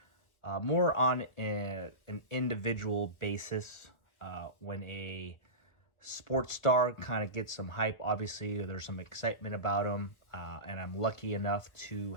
more on an individual basis. When a sports star kind of gets some hype, obviously there's some excitement about him, and I'm lucky enough to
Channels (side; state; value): right; late; 1.2 ms